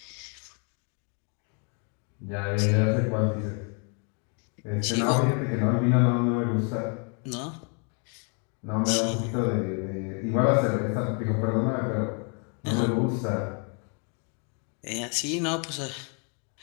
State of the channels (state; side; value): quieter; right; 38.1 dB